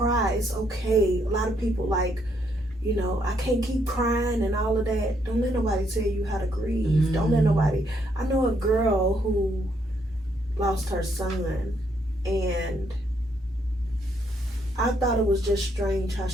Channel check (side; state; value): both; normal; correlation 0.73